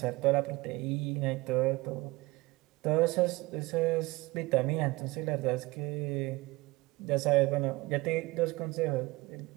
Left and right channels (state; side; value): quieter; left; 21.9 dB